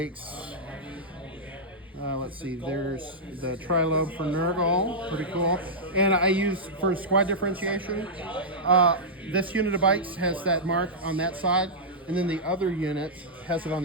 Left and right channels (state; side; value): normal; both; correlation -0.10